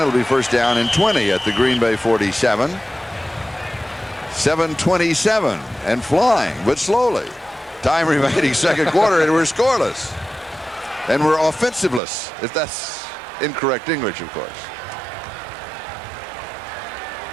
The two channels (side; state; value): left; drops out; at 12.0 s